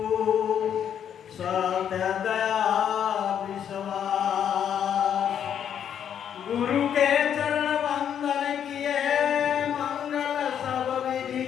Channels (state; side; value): quieter; right; 9.0 dB